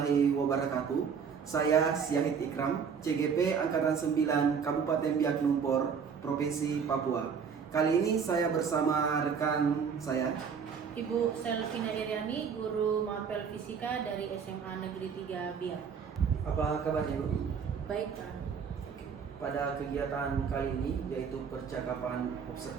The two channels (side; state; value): left; quieter; 6.5 dB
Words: wabarakatuh. Saya Syahid Ikram, CGP Angkatan 9 Kabupaten Biak Numfor, Provinsi Papua. Kali ini saya bersama rekan saya, Ibu Selvina Iriani, guru mapel fisika dari SMA Negeri 3 Biak. Apa kabarnya, Bu? Baik, Pak. Pada kegiatan kali ini yaitu percakapan